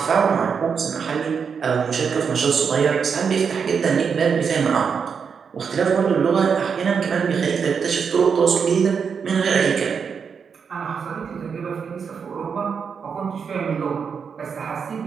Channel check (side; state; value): left; quieter; 6.3 dB